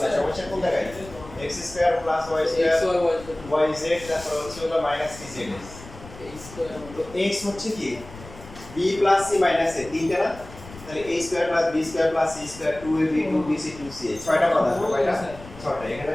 নাই সমস্যা কোন জায়গায় x² + y² yz তারপর হচ্ছে হলো মাইনাস কি z তো x হচ্ছে কি b + c - a তিনটা না তাহলে a² + b² + c² 2ab 2bc 2ca ছয়টা কথা কয়টা ছয়টা এখানে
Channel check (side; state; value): left; noise; rumble, 17 dB below the sound